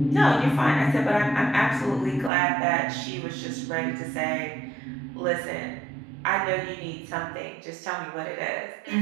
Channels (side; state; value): left; drops out; at 2.3 s